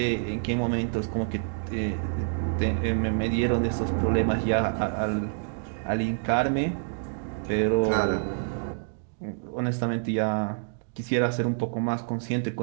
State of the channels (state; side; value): silent; left; digital silence